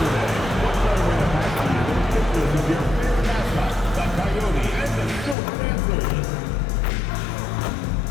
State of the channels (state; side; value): drops out; right; at 5.4 s